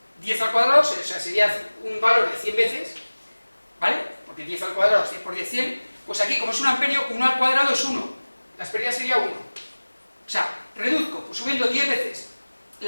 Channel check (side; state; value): both; inverted; correlation -1.00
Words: 10 al cuadrado, o sea, sería un valor de 100 veces, ¿vale? Porque 10 al cuadrado, 100 por 10, 100, pues aquí como es un amperio, 1 al cuadrado es 1, las pérdidas sería 1. O sea, reduzco, pues subiendo 10 veces